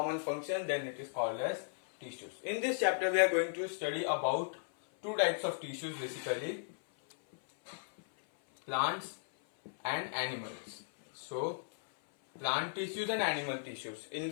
function, then it is called as tissues. In this chapter we are going to study about two types of tissues, basically plants and animals. So plant tissues and animal tissues.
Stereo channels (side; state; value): right; silent; 54 dB below the other